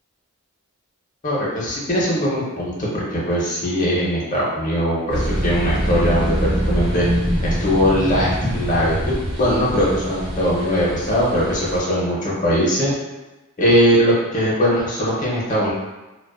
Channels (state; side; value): normal; both; correlation 0.31